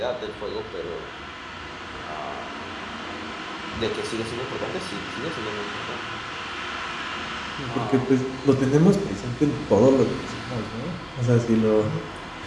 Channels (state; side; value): identical; both; correlation 1.00